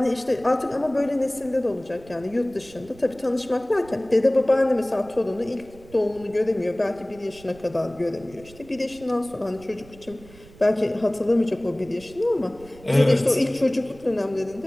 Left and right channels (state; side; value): noise; right; rumble, 22 dB below the sound